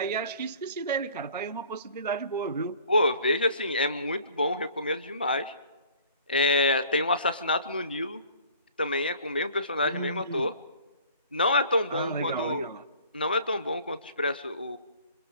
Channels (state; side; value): inverted; both; correlation -0.51